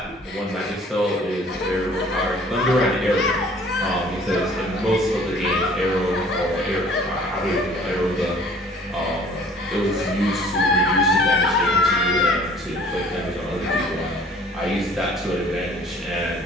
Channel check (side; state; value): both; normal; correlation 0.53